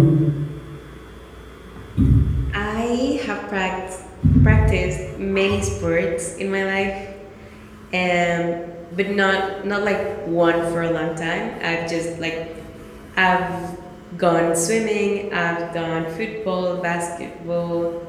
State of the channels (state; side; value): identical; both; correlation 1.00